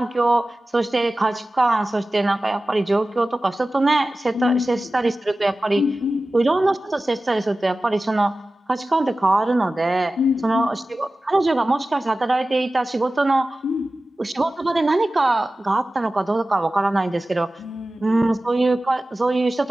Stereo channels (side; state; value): both; normal; correlation 0.96